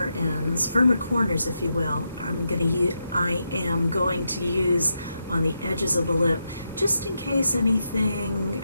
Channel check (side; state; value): both; inverted; correlation -0.85